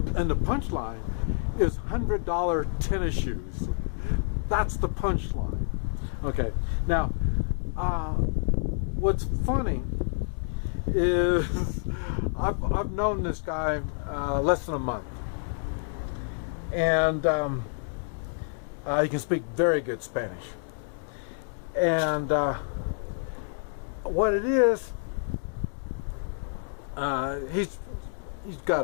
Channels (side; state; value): right; silent; digital silence